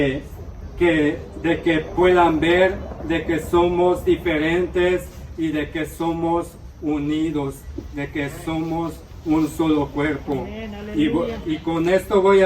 que puedan ver de que somos diferentes y de que somos unidos, de que somos un solo cuerpo. Y con esto voy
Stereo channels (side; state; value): both; identical; correlation 1.00